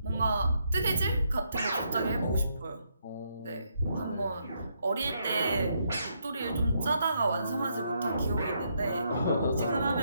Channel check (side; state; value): both; inverted; correlation -0.76